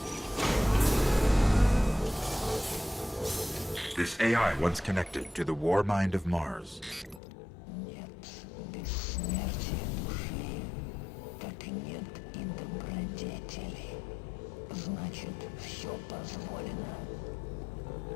This AI once connected to the war mind of Mars. Нет бессмертия души, как нет и добродетели. Значит, все позволено.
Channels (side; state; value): right; drops out; at 7.2 s